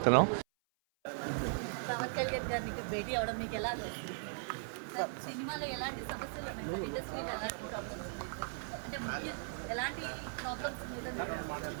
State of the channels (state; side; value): silent; left; 52 dB below the other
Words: పవన్ కళ్యాణ్ గారికి భేటీ అవడం మీకు ఎలా అనిపిస్తుంది సార్? సినిమాలో ఎలాంటి సమస్యలు ఉన్నాయి సార్? ఇండస్ట్రీలో ఎలాంటి ప్రాబ్లమ్స్ ఉన్నాయి సార్? అంటే ముఖ్య ఎలాంటి ప్రాబ్లమ్స్ మీద